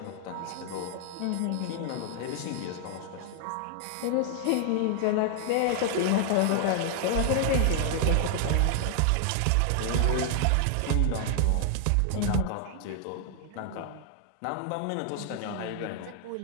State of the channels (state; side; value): different; both; correlation 0.00